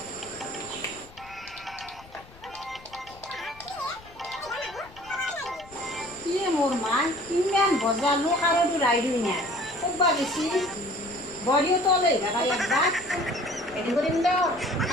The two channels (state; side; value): noise; left; rumble, 23 dB below the sound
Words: কি মোৰ মা ইমান বজালো কাৰোটো ৰাইডো নাই ক'বা বেছি বৰিও তলে ভাড়া একবাৰ এদিন কৰিম দিয়ক